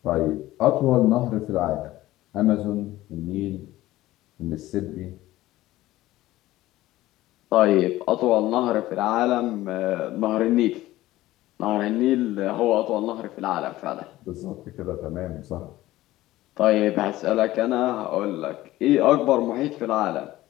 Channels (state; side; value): quieter; right; 16.3 dB